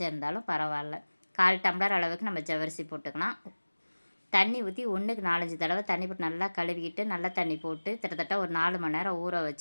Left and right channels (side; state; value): both; inverted; correlation -1.00